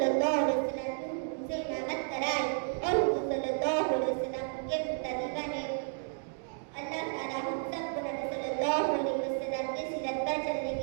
अलैहि वसल्लम से इमामत कराई और हुजूर सल्लल्लाहु अलैहि वसल्लम उनके मुक्तदी बने। अल्लाह ताला हम सबको नबी सल्लल्लाहु अलैहि वसल्लम की सीरत पर चलने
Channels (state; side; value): silent; left; 56 dB below the other